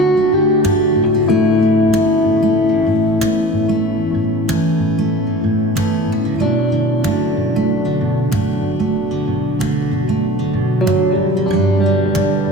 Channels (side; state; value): both; normal; correlation 0.41